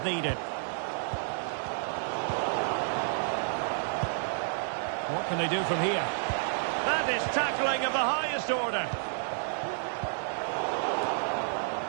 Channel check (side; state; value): left; silent; digital silence